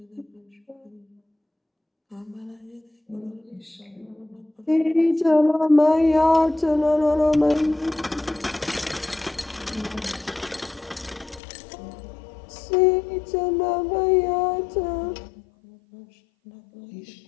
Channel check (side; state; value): right; drops out; at 11.4 s